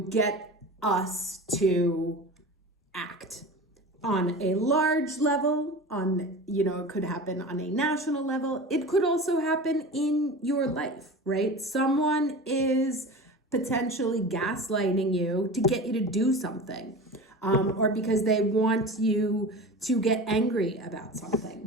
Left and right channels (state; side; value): normal; both; correlation 0.33